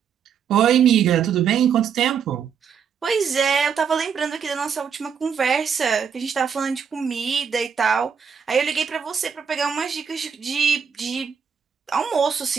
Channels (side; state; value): left; quieter; 7.1 dB